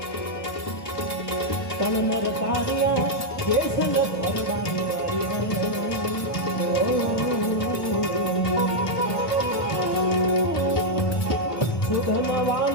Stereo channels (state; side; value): late; right; 1.3 ms